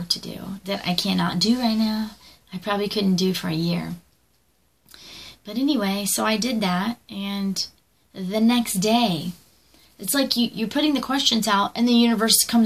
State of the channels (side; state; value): both; identical; correlation 1.00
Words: to do that I cannot do right now. I probably couldn't do for a year. But anyway, so I did that, and the next day, it's like you're putting the questions out, and the universe